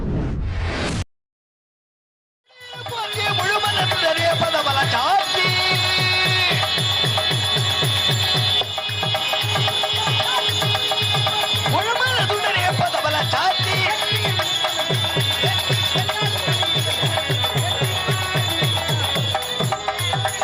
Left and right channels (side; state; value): both; identical; correlation 1.00